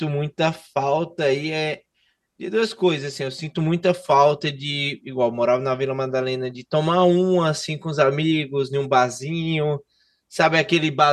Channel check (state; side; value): identical; both; correlation 1.00